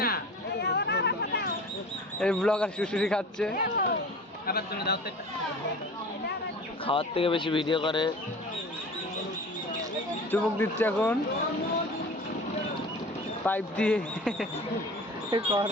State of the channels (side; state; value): both; normal; correlation 0.39